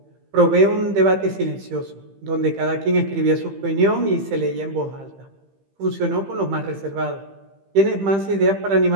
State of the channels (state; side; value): late; left; 15 ms